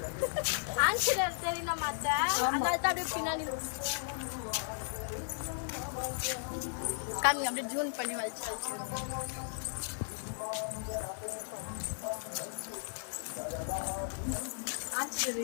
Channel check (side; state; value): right; silent; digital silence